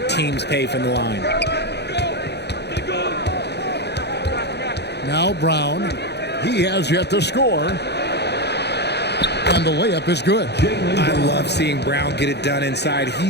teams pay from the line. Now Brown. He has yet to score. And the layup is good. I love seeing Brown get it done inside.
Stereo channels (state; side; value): late; right; 0.49 ms